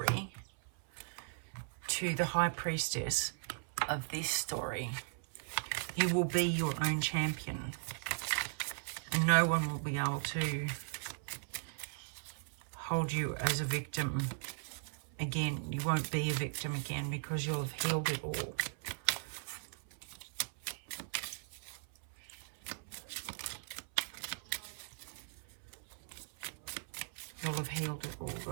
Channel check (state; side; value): silent; left; 52 dB below the other